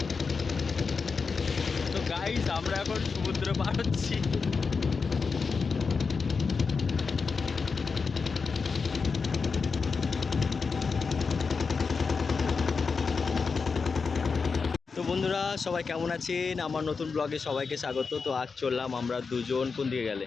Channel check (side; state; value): right; quieter; 5.0 dB